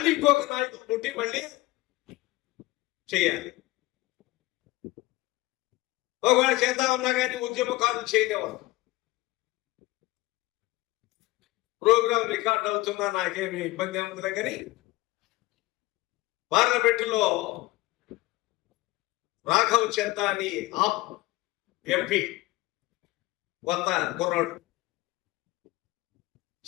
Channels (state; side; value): quieter; right; 19.6 dB